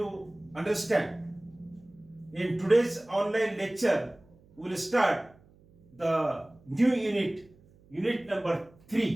understand. In today's online lecture, we will start the new unit number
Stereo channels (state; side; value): noise; right; hum, 28 dB below the sound